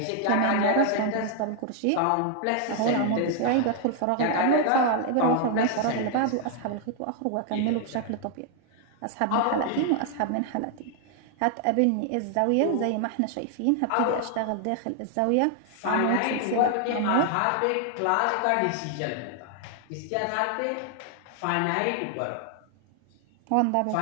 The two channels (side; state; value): both; different; correlation 0.00